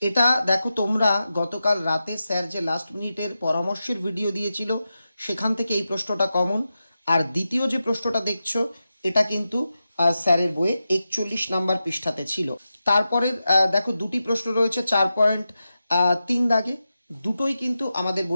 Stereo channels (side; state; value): both; inverted; correlation -0.91